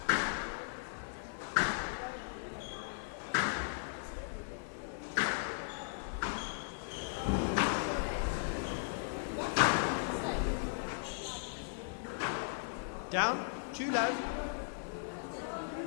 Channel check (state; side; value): silent; right; digital silence